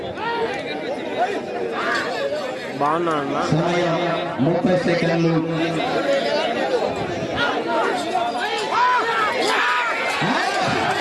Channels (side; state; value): both; identical; correlation 1.00